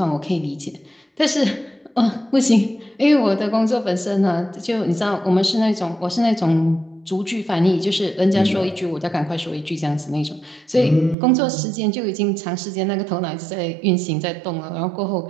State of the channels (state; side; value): drops out; left; at 11.2 s